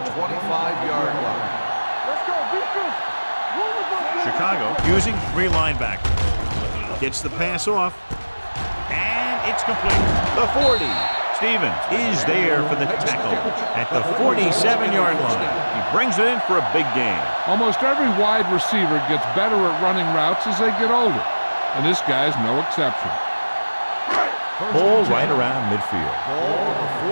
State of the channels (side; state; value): both; inverted; correlation -1.00